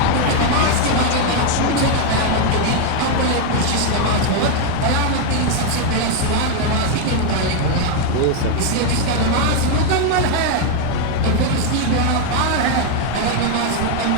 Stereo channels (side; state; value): both; different; correlation 0.01